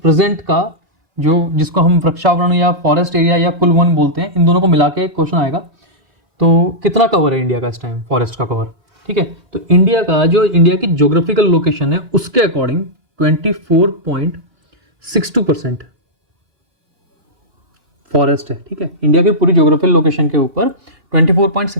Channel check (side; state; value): left; late; 2.9 ms